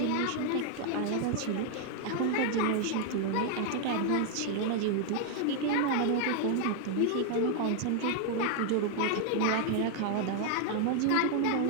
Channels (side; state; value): both; different; correlation 0.00